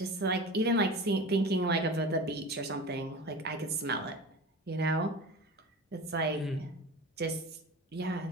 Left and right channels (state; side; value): normal; both; correlation 0.33